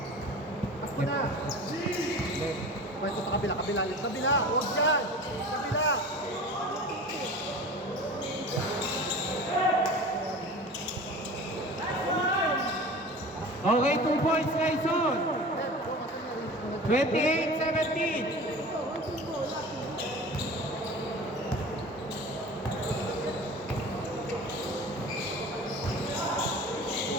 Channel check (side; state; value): both; normal; correlation 0.37